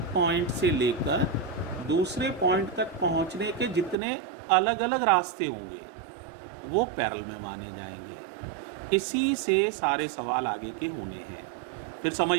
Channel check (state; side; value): drops out; left; at 4.0 s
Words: पॉइंट से लेकर दूसरे पॉइंट तक पहुंचने के जितने अलग अलग रास्ते होंगे वो पैरेलल में माने जाएंगे। इसी से सारे सवाल आगे के होने हैं। फिर समझ